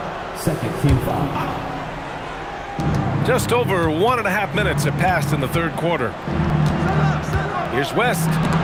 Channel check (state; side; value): identical; both; correlation 1.00